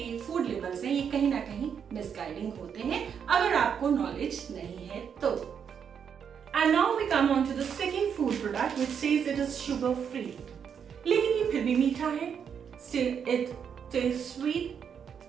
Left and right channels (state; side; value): quieter; left; 7.5 dB